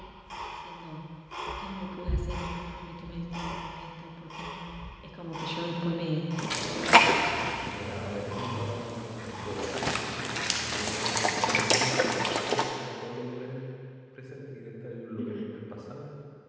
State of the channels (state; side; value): identical; both; correlation 1.00